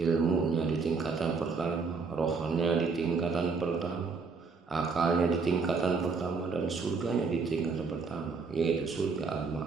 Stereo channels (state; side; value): quieter; left; 4.7 dB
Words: di tingkatan pertama, rohnya di tingkatan pertama, akalnya di tingkatan pertama, dan surganya di tingkatan pertama, yaitu surga